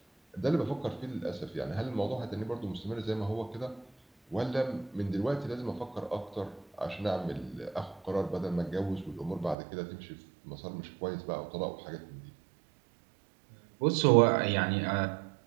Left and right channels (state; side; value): drops out; left; at 9.6 s